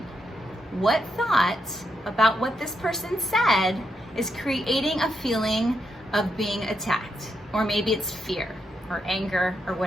What thought about what this person said is creating a feeling of being attacked? Or maybe it's fear or anger or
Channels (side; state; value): both; normal; correlation 0.81